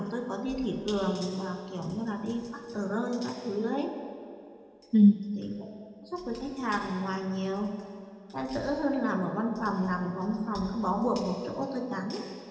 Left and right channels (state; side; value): identical; both; correlation 1.00